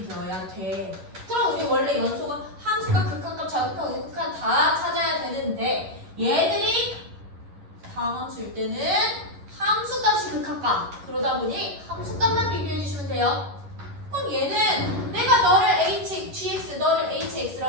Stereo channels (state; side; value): late; left; 11 ms